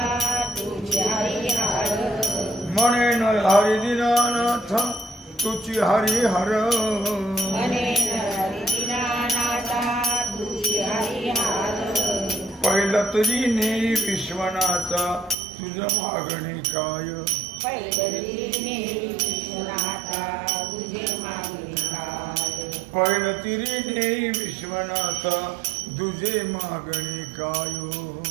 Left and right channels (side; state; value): left; drops out; at 15.4 s